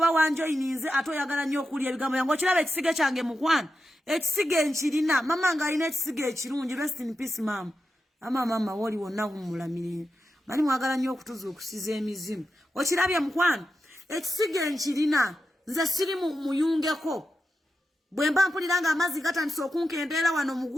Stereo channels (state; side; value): normal; both; correlation 0.89